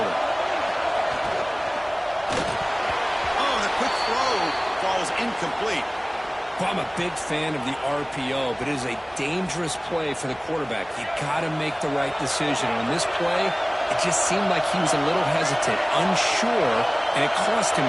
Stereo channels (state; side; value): identical; both; correlation 1.00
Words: Oh, the quick throw falls incomplete. Well, I'm a big fan of the RPO, but it is a dangerous play for the quarterback. You got to make the right decision. On this play, it just seemed like he was a little hesitant, unsure, and it cost him